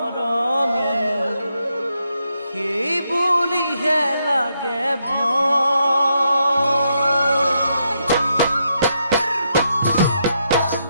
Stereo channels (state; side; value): inverted; both; correlation -0.79